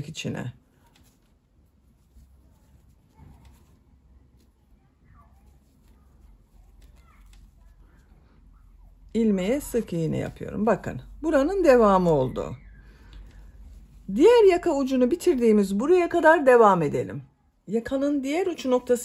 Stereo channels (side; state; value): both; identical; correlation 1.00